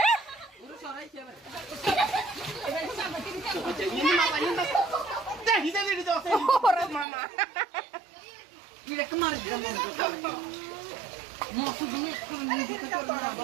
ওরে মামা Mira que mar de amor. Nossa, do meu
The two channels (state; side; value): drops out; left; at 7.1 s